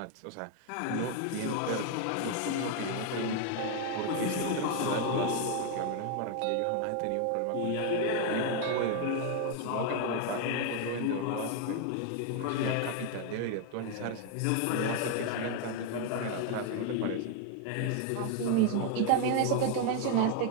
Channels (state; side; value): different; both; correlation 0.01